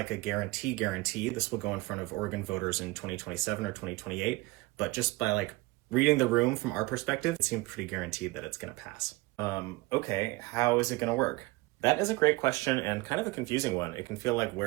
a guarantee. This will go in front of Oregon voters in 2027 or 2028, but just by reading the room from our perspective, it seems pretty guaranteed that it's going to pass. Okay, how is it going to work? That is a great question and kind of a confusing one. It can feel like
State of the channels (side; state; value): left; quieter; 21.8 dB